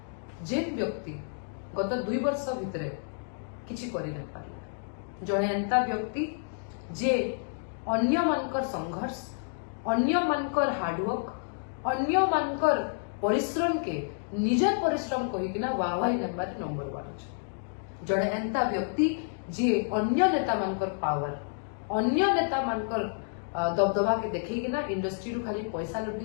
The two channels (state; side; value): silent; right; digital silence